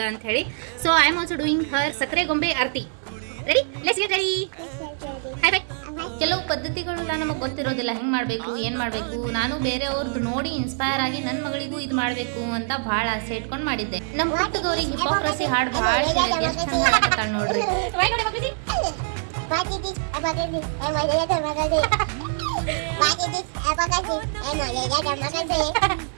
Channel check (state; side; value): silent; left; 62 dB below the other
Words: ಅಂತ ಹೇಳಿ. So I am also doing her ಸಕ್ಕರೆ ಗೊಂಬೆ ಆರತಿ. Ready, let's get ready. Hi bye. ಕೆಲವು ಪದ್ಧತಿಗಳೆಲ್ಲ ನಮಗೆ ಗೊತ್ತಿರೋದಿಲ್ಲ, ಹೆಂಗೆ ಮಾಡಬೇಕು ಏನು ಮಾಡಬೇಕು. ನಾನು ಬೇರೆಯವ್ರದ್ದು ನೋಡಿ ಇನ್ಸ್ಪೈರ್ ಆಗಿ ನನ್ನ ಮಗಳಿಗೂ ಇದು ಮಾಡಬೇಕು ಅಂತ ಭಾಳ ಆಸೆ ಇಟ್ಕೊಂಡು ಮಾಡಿದ್ದೆ. ನಮ್ಮ ಹುಟ್ಟದವ್ರಿಗೆ ಹಿಪೋಕ್ರಸಿ ಹಾಡು ಭಾಳ ಹೇಳಿದ್ದೆ, ಎಷ್ಟು ಚಂದ ಹಾಡ್ತಾಳೆ ನೋಡ್ರಿ.